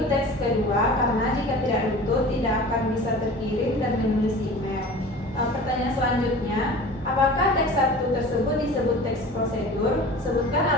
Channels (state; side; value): normal; both; correlation 0.39